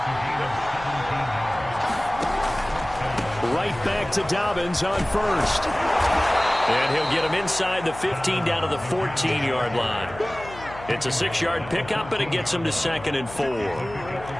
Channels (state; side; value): noise; left; hum, 15 dB below the sound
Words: Right back to Dobbins on first. And he'll get him inside the 15 down to the 14-yard line. It's a 6-yard pickup, and it gets him to 2nd and 4.